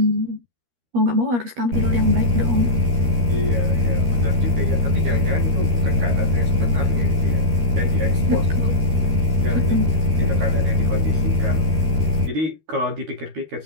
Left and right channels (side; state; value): left; late; 13 ms